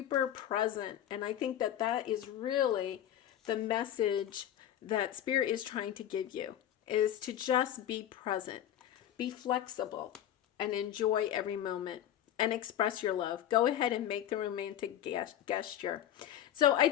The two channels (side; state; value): right; quieter; 11.2 dB